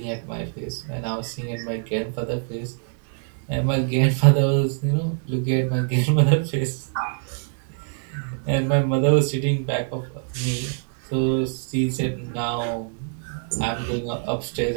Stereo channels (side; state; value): left; silent; 60 dB below the other